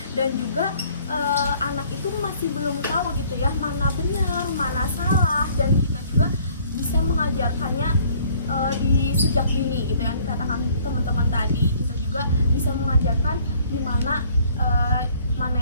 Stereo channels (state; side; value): inverted; both; correlation -0.58